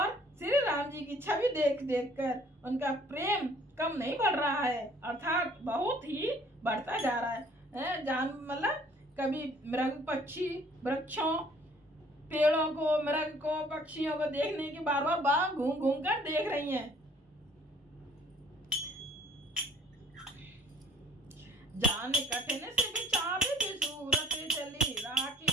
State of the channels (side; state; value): both; normal; correlation 0.57